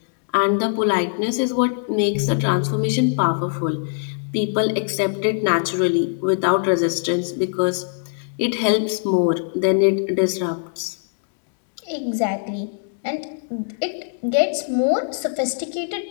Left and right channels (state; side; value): silent; right; digital silence